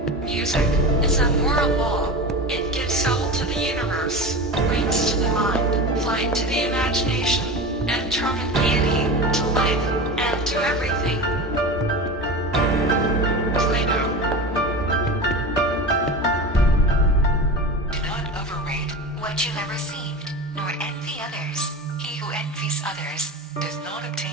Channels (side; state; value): both; normal; correlation 0.28